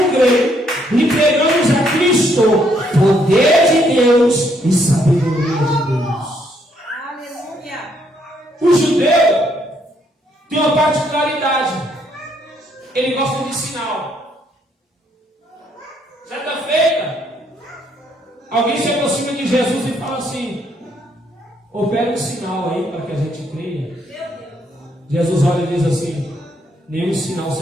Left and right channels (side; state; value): both; normal; correlation 0.71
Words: gregos, lhe pregamos a Cristo, poder de Deus Deus e sabedoria de Deus. Aleluia. O judeu tem uma particularidade. Ele gosta de sinal. Certa feita, alguém se aproxima de Jesus e fala assim: opera um sinal aí para que a gente creia. Jesus olha e diz assim: nenhum sinal